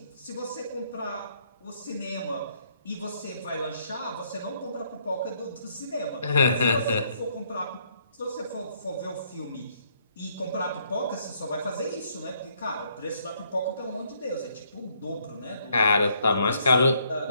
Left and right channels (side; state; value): both; inverted; correlation -0.69